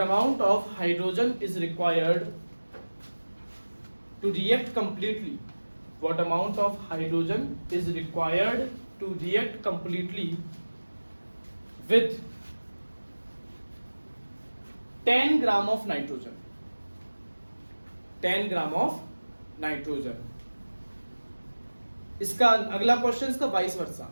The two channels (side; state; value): both; inverted; correlation -1.00